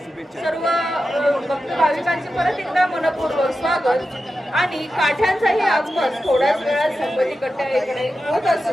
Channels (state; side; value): normal; both; correlation 0.91